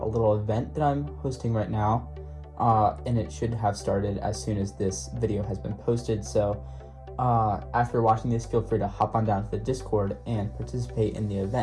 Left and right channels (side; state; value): both; identical; correlation 1.00